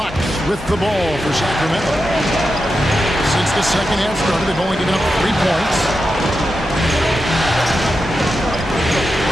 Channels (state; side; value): normal; both; correlation 0.89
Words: with the ball for Sacramento. Since the second half started, they've only given up 3 points.